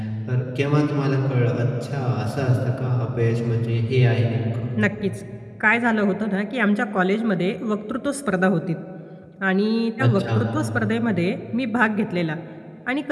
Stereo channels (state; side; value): identical; both; correlation 1.00